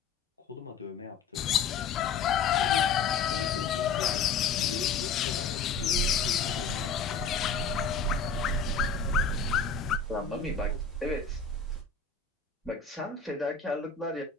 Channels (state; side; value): quieter; right; 5.1 dB